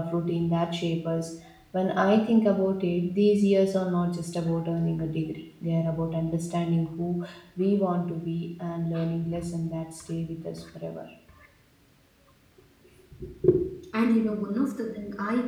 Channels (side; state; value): both; identical; correlation 1.00